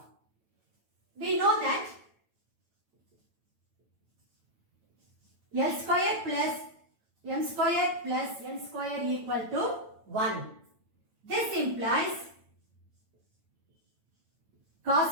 We know that L square plus M square plus N square equal to 1. This implies cos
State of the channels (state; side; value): late; left; 9.0 ms